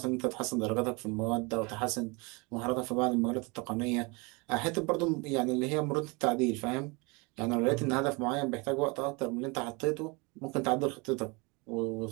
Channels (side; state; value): left; quieter; 28.2 dB